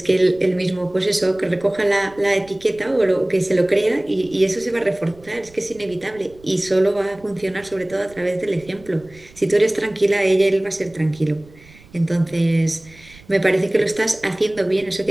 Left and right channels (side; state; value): right; noise; rumble, 24 dB below the sound